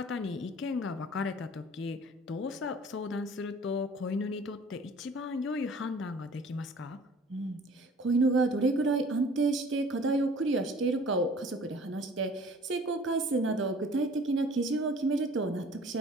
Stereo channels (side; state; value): both; normal; correlation 0.50